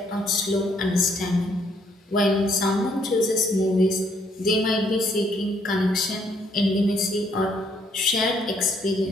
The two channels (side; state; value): both; normal; correlation 0.69